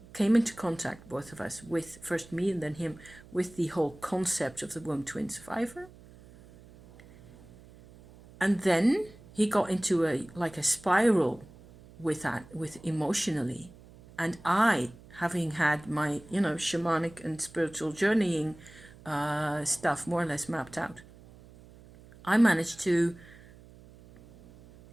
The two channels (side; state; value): right; noise; hum, 22 dB below the sound